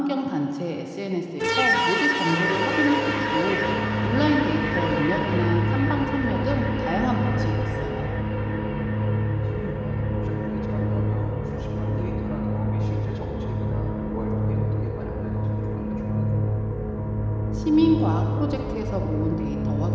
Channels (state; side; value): identical; both; correlation 1.00